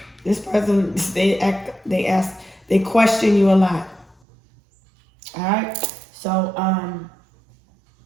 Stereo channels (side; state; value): left; drops out; at 4.2 s